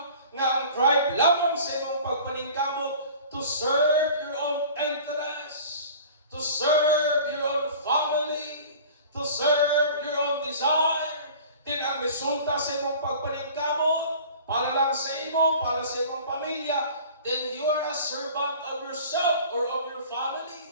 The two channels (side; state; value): both; inverted; correlation -0.43